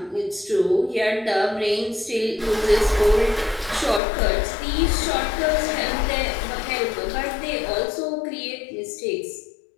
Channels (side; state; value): right; drops out; at 4.0 s